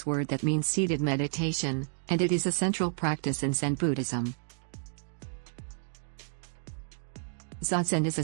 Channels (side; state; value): left; silent; digital silence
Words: word that means seated meditation, and it is a central practice in Zen Buddhism. Zazen is a